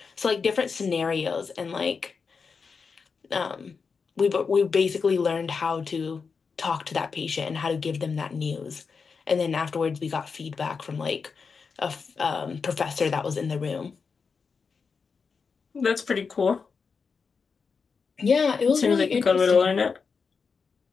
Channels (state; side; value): quieter; right; 5.3 dB